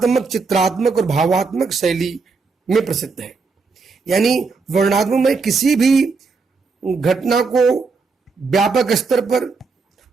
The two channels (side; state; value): left; quieter; 4.5 dB